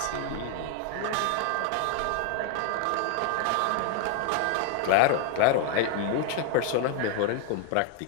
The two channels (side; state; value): both; different; correlation 0.01